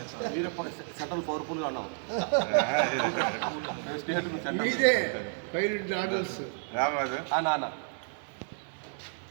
సెంట్రల్ పవర్ఫుల్గా ఉన్నావు నాన్న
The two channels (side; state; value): left; silent; 57 dB below the other